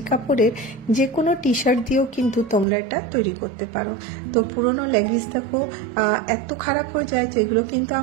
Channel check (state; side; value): drops out; left; at 2.7 s